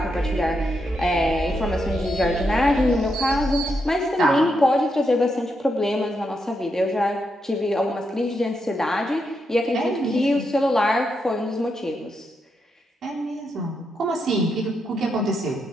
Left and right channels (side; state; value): both; normal; correlation 0.82